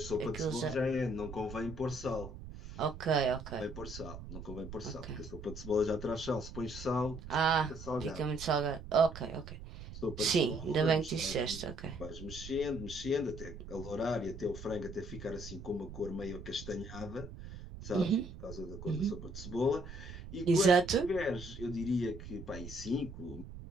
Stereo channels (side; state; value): right; noise; rumble, 12 dB below the sound